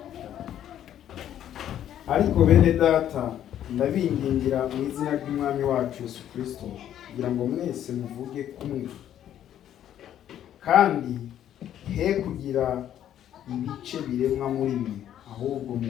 Ariko bene data ndabingingira mu izina ry'Umwami wacu Yesu Kristo kugira ngo mwese muvuge kumwe kandi he kugira ibice biremwa muri mwe ahubwo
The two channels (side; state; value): right; quieter; 10.9 dB